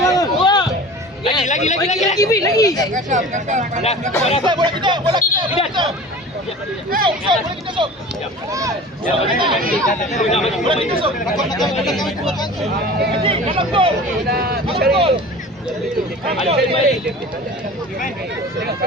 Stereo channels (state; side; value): normal; both; correlation 0.39